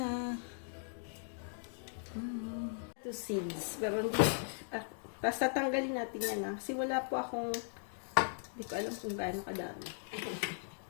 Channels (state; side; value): silent; right; digital silence